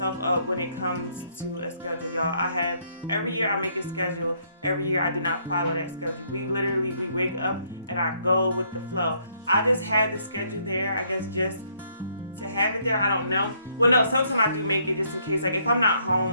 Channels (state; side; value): inverted; both; correlation -0.69